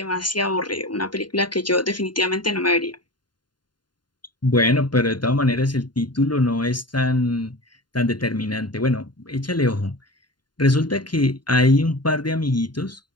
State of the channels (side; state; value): right; late; 0.71 ms